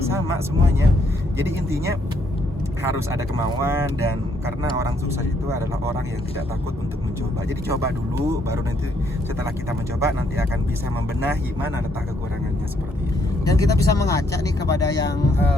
sama semuanya. Jadi intinya harus ada kemauan, dan karena orang sukses itu adalah orang yang tidak takut untuk mencoba. Jadi coba dulu, baru nanti setelah kita mencoba nanti akan bisa membenahi mana letak kekurangannya, seperti itu. Dan kita bisa mengajak nih kepada yang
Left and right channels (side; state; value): both; normal; correlation 0.71